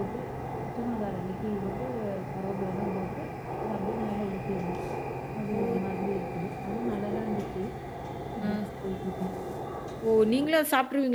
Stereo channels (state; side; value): identical; both; correlation 1.00